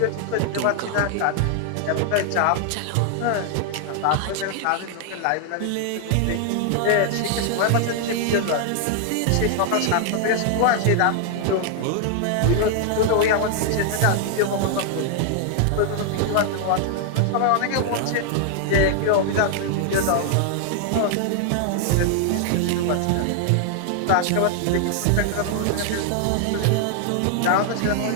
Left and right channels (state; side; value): different; both; correlation 0.00